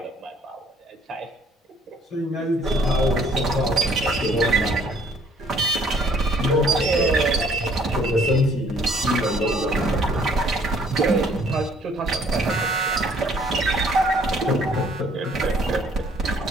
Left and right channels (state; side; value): normal; both; correlation 0.60